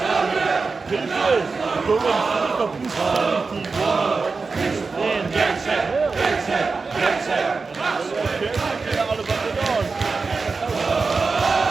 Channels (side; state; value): left; quieter; 4.4 dB